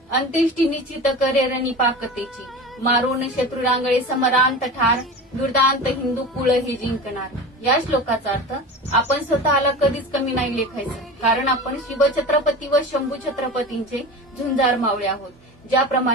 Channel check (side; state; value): both; normal; correlation 0.31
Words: अंत्येष्टी निश्चित करे रणी पाकतेची. मारून शत्रू रांगळे समरांत ठार, दुर्दांत हिंदू कुळ हे जिंकणार. या श्लोकाचा अर्थ आपण स्वतःला कधीच कमी नाही लेखायचं, कारण आपण शिवछत्रपती व शंभू छत्रपतींचे झुंजार मावळे आहोत.